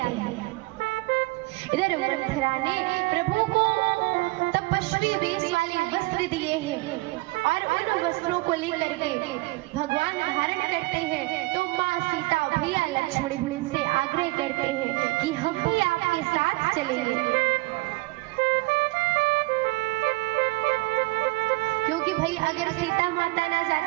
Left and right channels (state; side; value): quieter; left; 22.8 dB